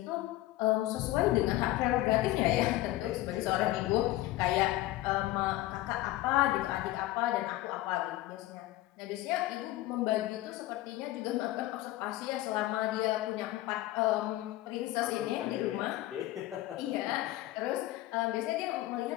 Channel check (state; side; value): quieter; right; 16.4 dB